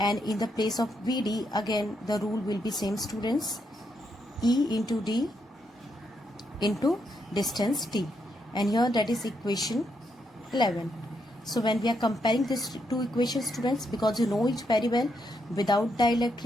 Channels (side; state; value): both; normal; correlation 0.79